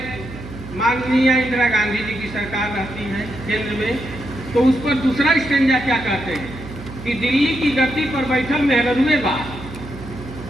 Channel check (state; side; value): noise; right; hum, 13 dB below the sound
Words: माननीय इंदिरा गांधी जी की सरकार रहती है केंद्र में, तो उस पर दूसरा स्टेंजा क्या कहते हैं कि दिल्ली की गद्दी पर बैठल मेहरुए बा,